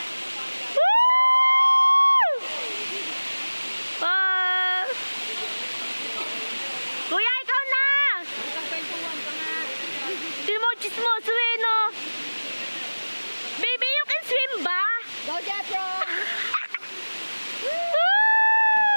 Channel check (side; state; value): both; inverted; correlation -1.00